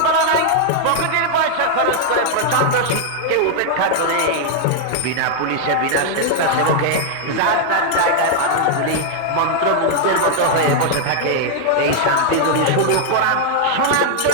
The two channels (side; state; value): both; different; correlation 0.00